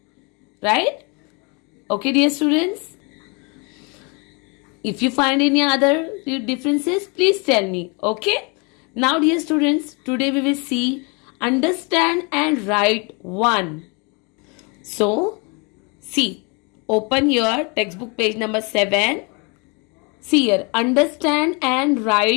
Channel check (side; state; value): right; quieter; 32.0 dB